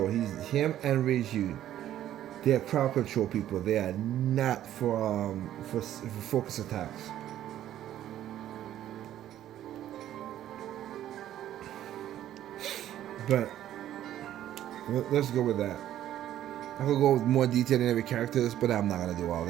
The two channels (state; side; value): quieter; left; 12.1 dB